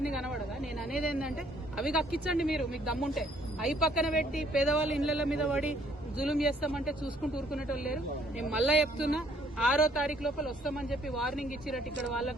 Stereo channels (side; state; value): both; normal; correlation 0.64